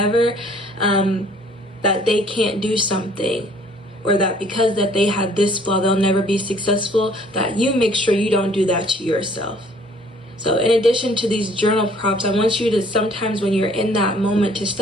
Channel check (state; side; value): normal; both; correlation 0.57